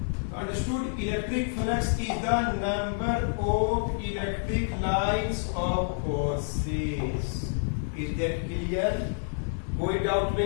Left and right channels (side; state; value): right; silent; 59 dB below the other